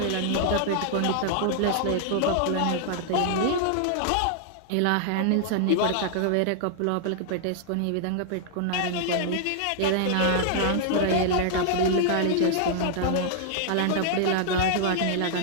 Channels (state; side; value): different; both; correlation -0.01